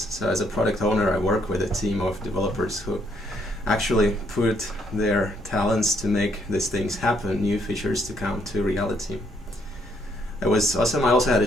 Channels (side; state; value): both; normal; correlation 0.70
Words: So as a product owner, I work with a team of developers who actually put their talents to make these things happen, new features to come to reality. It was awesome. I also had a